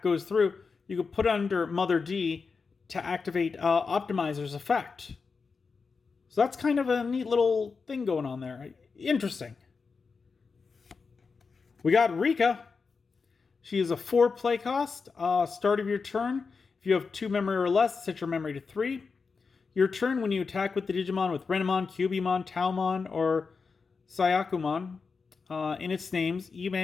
goes through, you can put under Mother D to activate Optimizer's effect. So that's kind of a neat little thing going on there. Interesting. We got Rika. She is a 4 play cost. Start of your turn. If you have 2 memory or less, set your memory to 3. Your turn, when you attack with the Digimon with Renamon, Cubimon, Taomon, or Sayakumon in its names, you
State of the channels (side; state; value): right; quieter; 4.9 dB